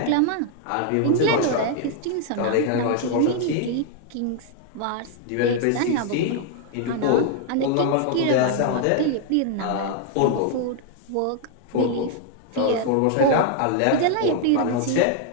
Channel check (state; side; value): different; both; correlation 0.00